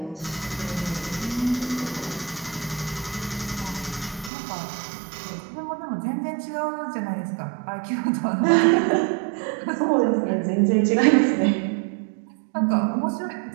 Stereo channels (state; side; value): drops out; left; at 4.3 s